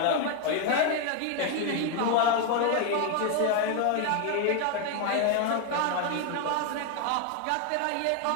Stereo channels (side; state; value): both; different; correlation 0.01